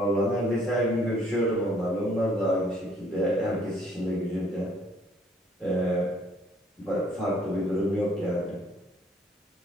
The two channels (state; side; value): normal; both; correlation 0.61